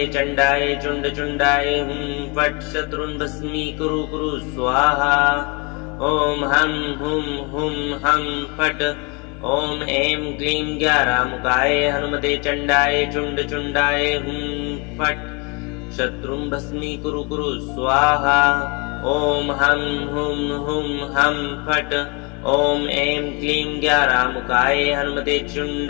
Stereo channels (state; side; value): quieter; right; 30.9 dB